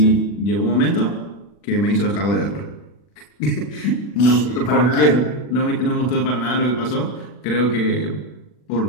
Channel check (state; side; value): late; right; 40 ms